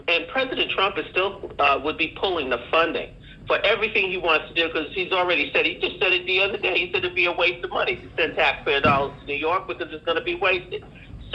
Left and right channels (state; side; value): identical; both; correlation 1.00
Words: President Trump is still would be pulling the funding for everything he wants to do, because he's already said, he just said it the other day, he said it'd be a waste of money to send taxpayer dollars to New York because it's going to be wasted.